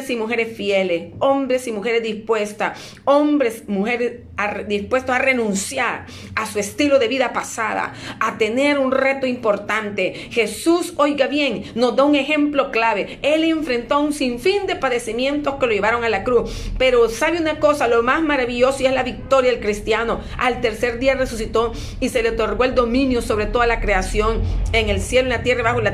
y mujeres fieles, hombres y mujeres dispuestas, hombres, mujeres dispuestos a renunciar a su estilo de vida pasada, a tener un reto importante. Jesús, oiga bien, nos da un ejemplo clave. Él enfrentó un sinfín de padecimientos que lo llevaron a la cruz. Pero sabe una cosa, lo más maravilloso, y es la victoria del cristiano. Al tercer día resucitó y se le otorgó el dominio sobre toda la creación, en el cielo, en la tierra y bajo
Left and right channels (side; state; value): both; identical; correlation 1.00